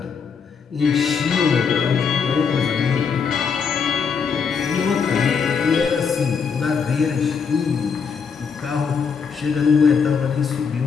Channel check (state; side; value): quieter; right; 6.0 dB